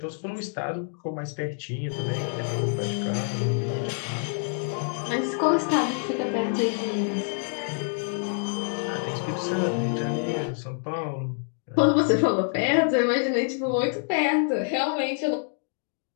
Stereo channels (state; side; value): silent; right; 56 dB below the other